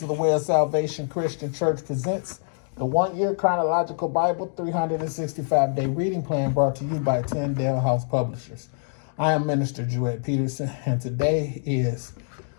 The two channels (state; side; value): silent; right; digital silence